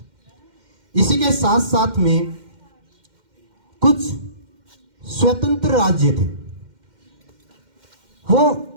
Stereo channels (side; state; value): left; late; 2.1 ms